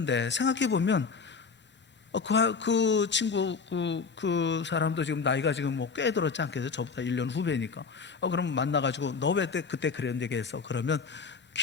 생각해 보면 그 친구 그 사람도 지금 나이가 지금 꽤 들었지 않겠어요? 저보다 1년 후배니까. 그럼 만나가지고 너 왜 그때 그런 얘기했어? 그러면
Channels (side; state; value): right; quieter; 5.2 dB